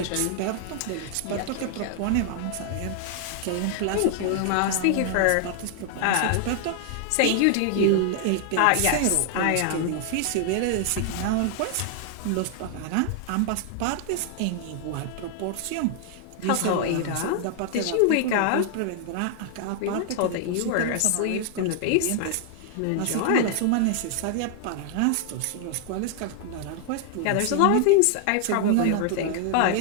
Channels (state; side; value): different; both; correlation 0.00